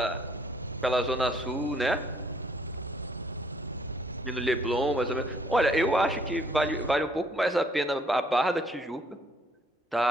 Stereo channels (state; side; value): normal; both; correlation 0.64